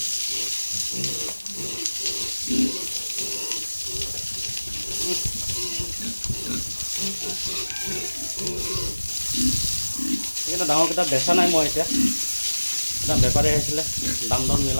এইকেইটা ডাঙৰকেইটা বেচা নাই মই। এতিয়া এটা বেপাৰী আহিছিলে, দাম দৰ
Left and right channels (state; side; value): inverted; both; correlation -1.00